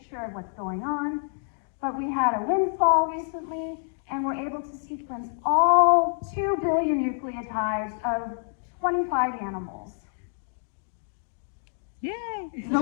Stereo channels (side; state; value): right; silent; digital silence